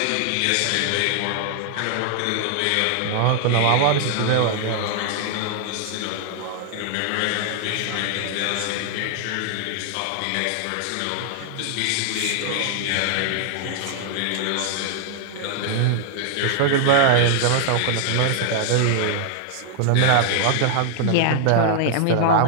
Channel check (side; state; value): both; different; correlation 0.00